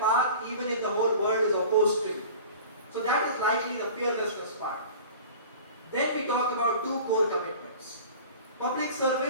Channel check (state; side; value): inverted; both; correlation -0.40